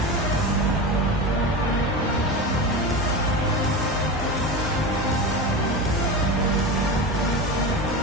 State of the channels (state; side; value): normal; both; correlation 0.24